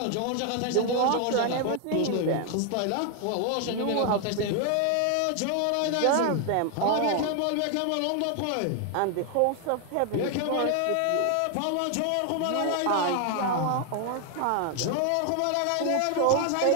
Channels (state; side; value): different; both; correlation 0.00